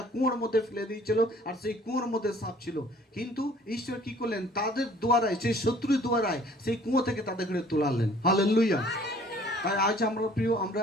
কুয়োর মধ্যে ফেলে দিয়েছিল আর সেই কুয়োর মধ্যে সাপ ছিল, কিন্তু ঈশ্বর কি করলেন, তাদের দ্বারায়, সেই শত্রুর দ্বারায় সেই কুয়ো থেকে তাদেরকে তোলালেন। হালেলুয়া। তাই আজ আমরা প্রিয়,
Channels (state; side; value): normal; both; correlation 0.54